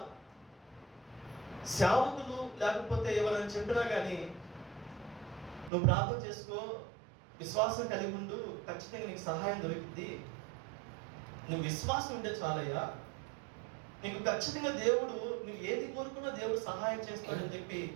సేవకులు లేకపోతే ఎవరైనా చెప్పినా కానీ నువ్వు ప్రార్థన చేసుకో, విశ్వాసం కలిగి ఉండు, ఖచ్చితంగా నీకు సహాయం దొరికింది, నువ్వు విశ్వాసం ఉంటే చాలయ్యా, నీకు ఖచ్చితంగా దేవుడు నువ్వు ఏది కోరుకున్నా దేవుడు సహాయం చేస్తాడని చెప్పి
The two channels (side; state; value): left; drops out; at 5.7 s